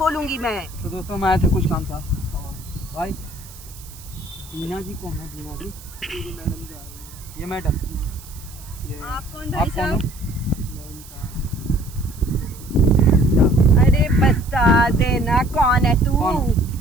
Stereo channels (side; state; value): right; noise; hiss, 19 dB below the sound